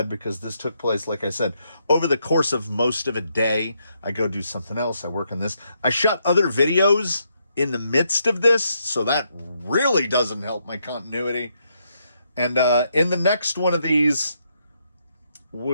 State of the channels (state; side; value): inverted; both; correlation -0.77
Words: because this took place, like I said, over the course of most of a day. I go do something else. I work on this. I shot other videos in the midst of this, so that really doesn't help my continuity. And in the next one of these,